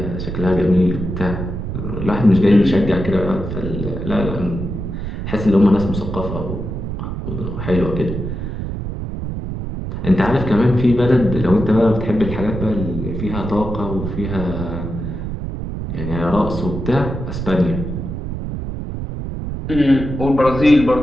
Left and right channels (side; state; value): right; noise; rumble, 5 dB below the sound